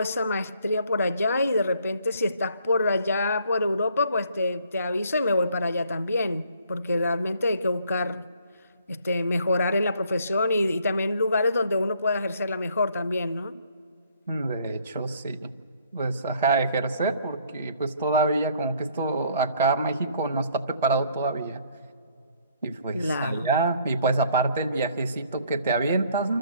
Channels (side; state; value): both; inverted; correlation -0.63